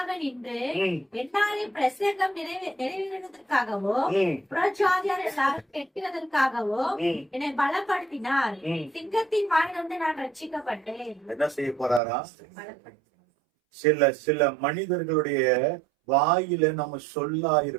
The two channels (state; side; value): drops out; left; at 12.0 s